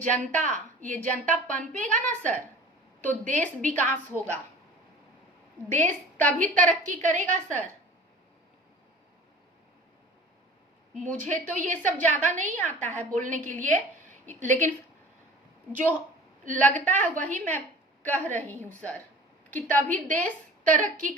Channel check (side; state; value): both; normal; correlation 0.43